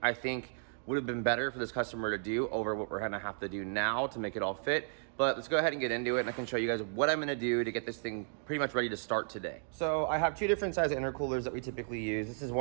think would have been better for this customer to do over what we're gonna have to do now to make it all fit. But let's go ahead and get into it, and I can show you guys what I'm gonna do to get this thing pretty much ready to start today. So I have two different size intercoolers that we typically use. This is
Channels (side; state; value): left; silent; digital silence